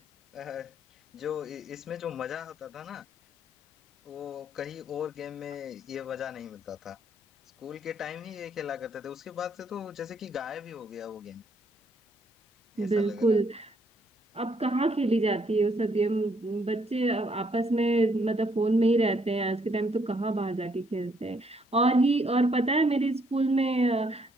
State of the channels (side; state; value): both; normal; correlation 0.70